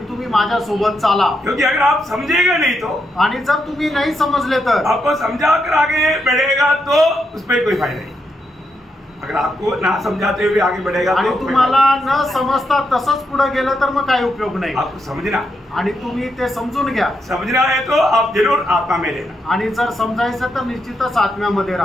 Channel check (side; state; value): both; normal; correlation 0.81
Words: तुम्ही माझ्या सोबत चाला. क्योंकि अगर आप समझेगा नहीं तो आणि जर तुम्ही नाही समजले तर आपको समझा कर आगे बढ़ेगा तो उसमें कोई फायदा नहीं. अगर आपको ना समझाते हुए आगे बढ़ेगा आणि तो तुम्हाला न समजता तसंच पुढे गेलं तर मग काय उपयोग नाही. आपको समझना आणि तुम्ही ते समजून घ्या. समझना है तो आप जरूर आत्मा में लेना आणि जर समजायचं तर निश्चितच आत्म्यामध्ये